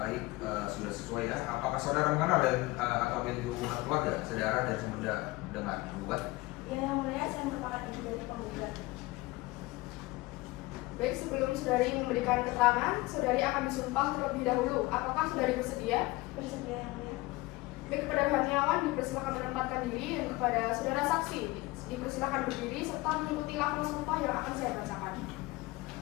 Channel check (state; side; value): quieter; right; 21.2 dB